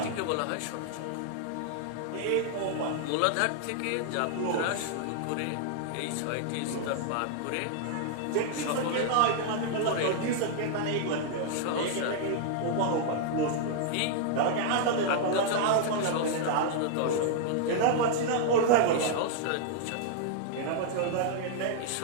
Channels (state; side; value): different; both; correlation -0.01